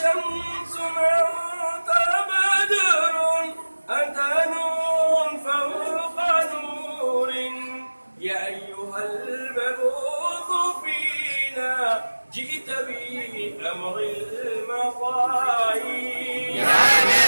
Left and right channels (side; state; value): both; inverted; correlation -1.00